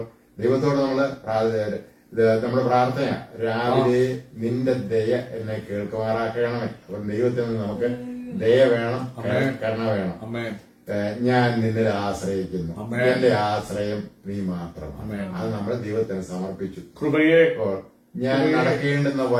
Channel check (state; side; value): identical; both; correlation 1.00